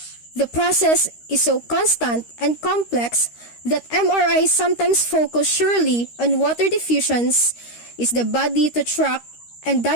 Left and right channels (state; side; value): late; right; 13 ms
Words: the process is so constant and complex that MRI sometimes focus surely on water diffusions is the body to track and